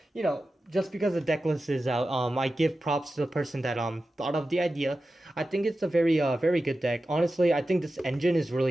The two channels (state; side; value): normal; both; correlation 0.93